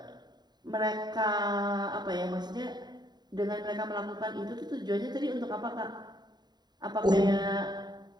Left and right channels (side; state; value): left; late; 0.20 ms